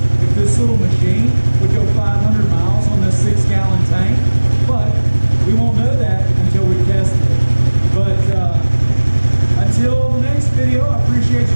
if this little machine would go 500 miles on this 6-gallon tank, but we won't know that until we test it. But until the next video, I appreciate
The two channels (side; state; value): both; inverted; correlation -1.00